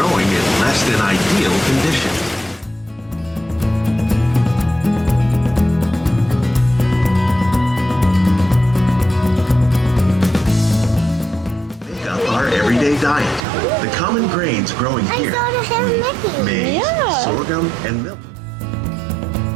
in less than ideal conditions. Make up our everyday diet. The common grains growing here include maize, sorghum, and milk.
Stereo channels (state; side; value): drops out; left; at 13.5 s